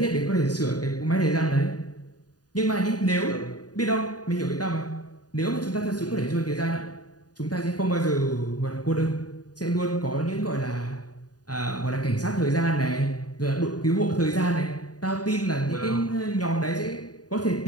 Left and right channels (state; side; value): late; right; 0.68 ms